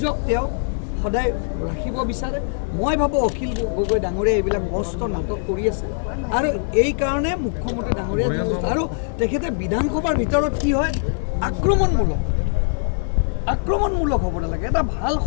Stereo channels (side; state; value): right; silent; 64 dB below the other